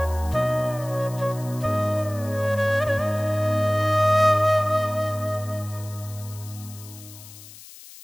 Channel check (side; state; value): left; noise; hiss, 18 dB below the sound